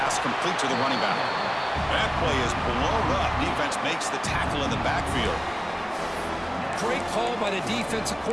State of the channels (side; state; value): both; identical; correlation 1.00